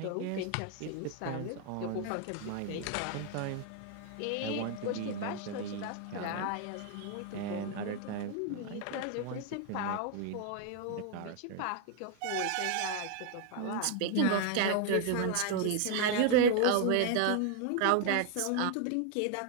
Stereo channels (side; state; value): both; different; correlation 0.00